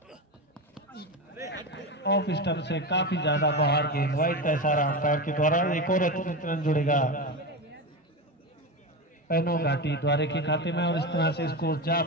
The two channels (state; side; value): normal; both; correlation 0.19